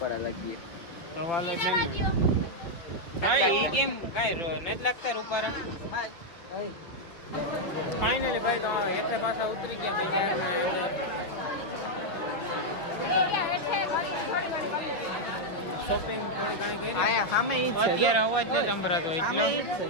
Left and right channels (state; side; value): late; right; 6.0 ms